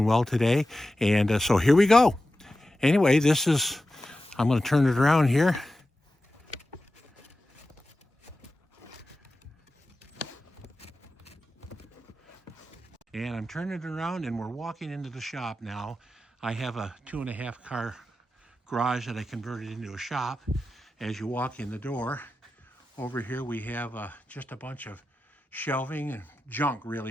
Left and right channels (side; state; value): both; normal; correlation 0.93